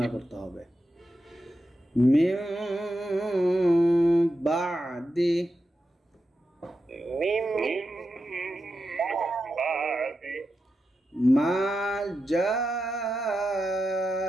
করতে হবে। মিম বাদি মা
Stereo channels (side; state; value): both; normal; correlation 0.89